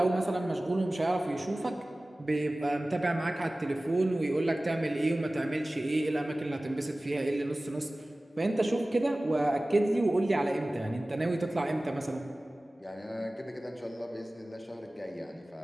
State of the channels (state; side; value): normal; both; correlation 0.98